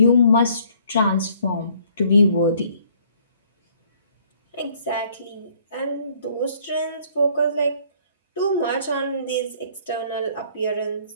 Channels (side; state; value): both; inverted; correlation -0.61